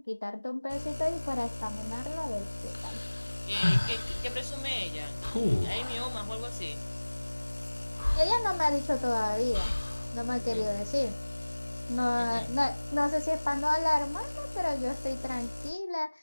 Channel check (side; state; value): both; inverted; correlation -1.00